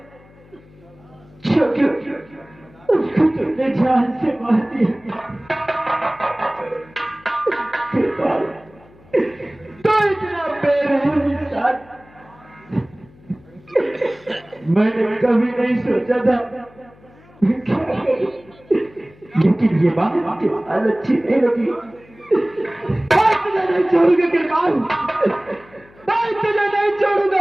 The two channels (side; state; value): left; noise; hum, 26 dB below the sound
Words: क्यों उसको तुमने जान से मार दिया? किरपान तो इतना बेरहम इंसान मैंने कभी नहीं सोचा था, लेकिन ये बात आपके हाल अच्छी नहीं लगी। मैं तुझे नहीं छोड़ूंगा किरपान, मैं तुझे नहीं छोड़ूंगा,